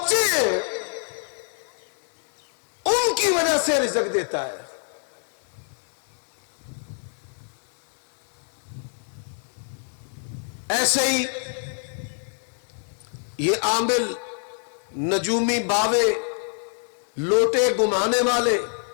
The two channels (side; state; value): right; silent; digital silence